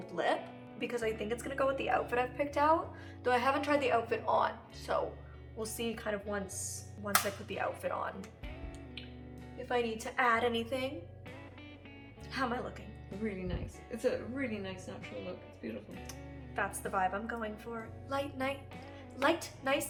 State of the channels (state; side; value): identical; both; correlation 1.00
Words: lip because I think it's gonna go with the outfit I've picked out, though I haven't tried the outfit on, so we'll see kind of once I put the outfit on if I need to add anything. How am I looking? Really nice. It's a really nice natural look. It's beautiful. That's the vibe I'm going for. Light,